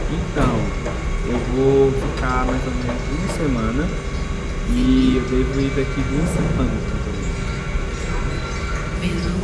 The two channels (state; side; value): identical; both; correlation 1.00